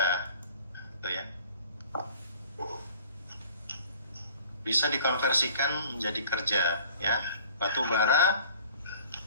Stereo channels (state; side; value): inverted; both; correlation -0.50